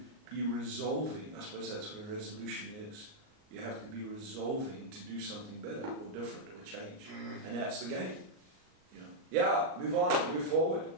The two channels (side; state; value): left; late; 38 ms